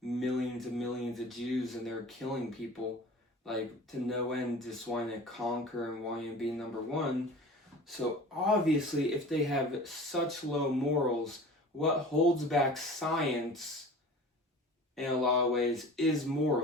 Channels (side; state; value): both; normal; correlation 0.40